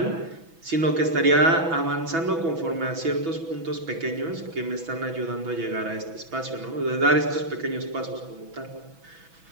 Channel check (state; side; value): late; left; 6.1 ms